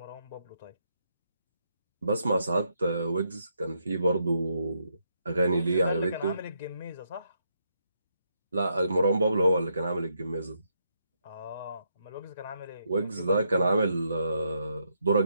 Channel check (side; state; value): both; inverted; correlation -0.77